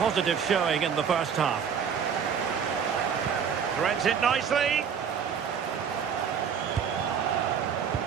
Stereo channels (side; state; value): left; quieter; 7.2 dB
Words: showing in the first half. Threads it nicely.